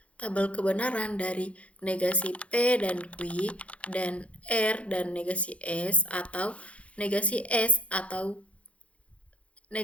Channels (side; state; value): right; late; 0.063 ms